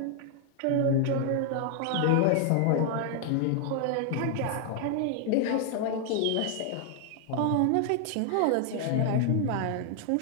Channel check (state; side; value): different; both; correlation 0.00